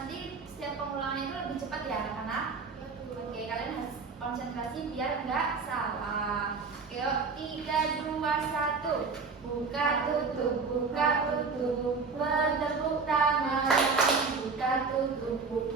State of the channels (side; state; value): left; quieter; 4.7 dB